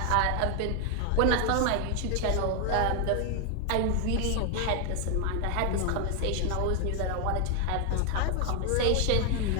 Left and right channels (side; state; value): both; different; correlation 0.00